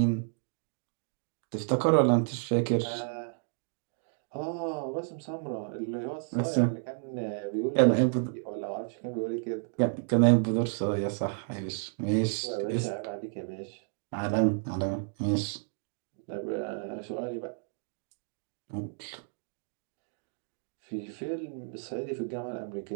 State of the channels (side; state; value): left; silent; digital silence